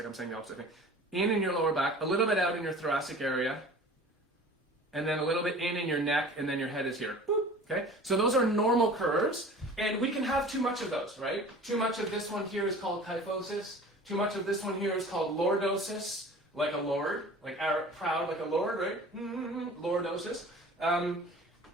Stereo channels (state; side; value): normal; both; correlation 0.43